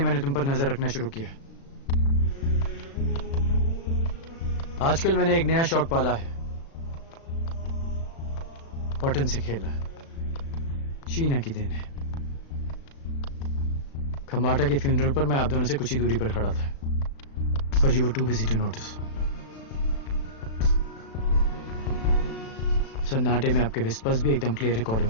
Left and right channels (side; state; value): right; late; 36 ms